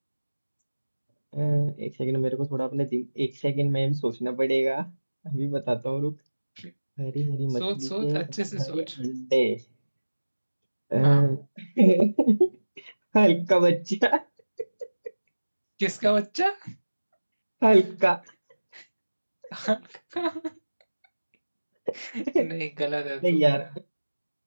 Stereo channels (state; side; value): inverted; both; correlation -1.00